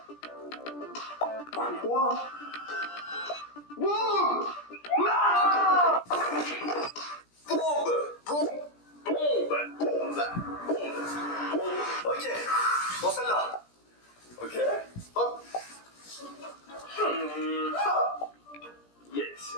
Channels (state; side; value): late; right; 17 ms